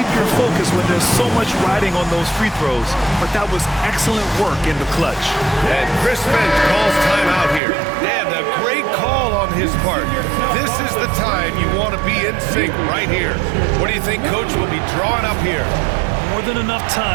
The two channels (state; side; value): drops out; left; at 7.6 s